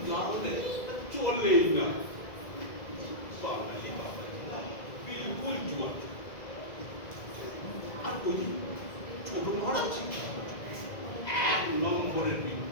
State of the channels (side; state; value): right; late; 2.0 ms